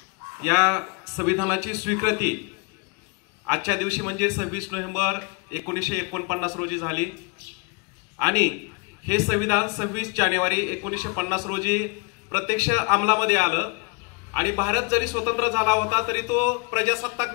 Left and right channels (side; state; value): right; quieter; 30.7 dB